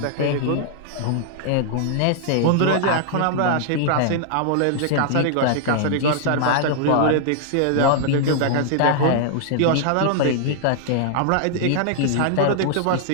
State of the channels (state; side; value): different; both; correlation -0.01